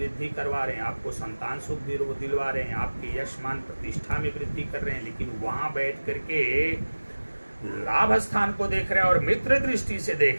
करवा रहे हैं, आपको संतान सुख दिलवा रहे हैं, आपके यश मान प्रतिष्ठा में वृद्धि कर रहे हैं, लेकिन वहां बैठ करके लाभ स्थान को देख रहे हैं और मित्र दृष्टि से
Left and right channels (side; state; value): both; inverted; correlation -1.00